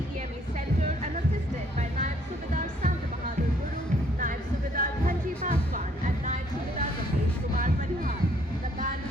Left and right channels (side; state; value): both; normal; correlation 0.65